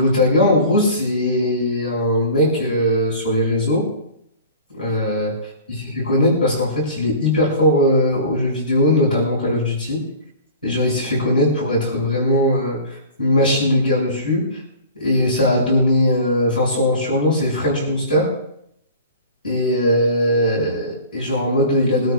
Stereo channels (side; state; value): both; inverted; correlation -0.42